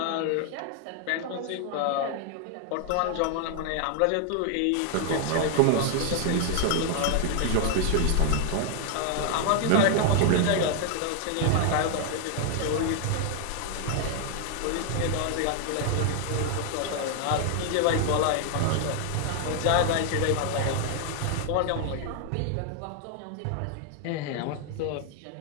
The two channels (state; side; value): different; both; correlation 0.00